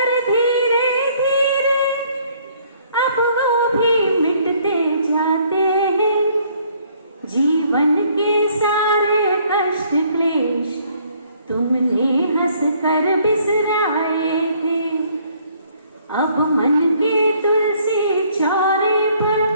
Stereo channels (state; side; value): inverted; both; correlation -0.63